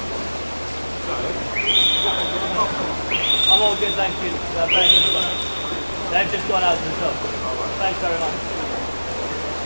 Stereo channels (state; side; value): inverted; both; correlation -1.00